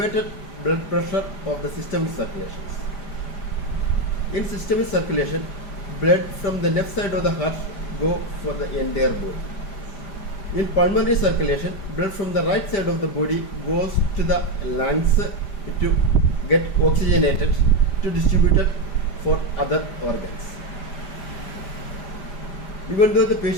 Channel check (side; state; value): right; late; 5.0 ms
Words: blood pressure of the systemic circulations. In systemic circulation, blood from the left side of the heart go for the entire body. In pulmonary circulation, blood from the right side of the body goes to the lungs to get oxygenated to distributed for other organs. Even though the